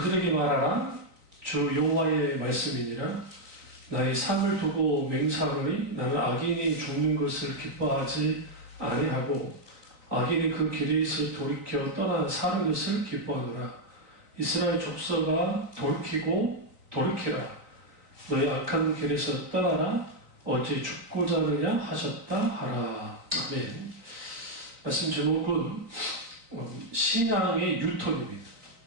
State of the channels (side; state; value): left; late; 3.9 ms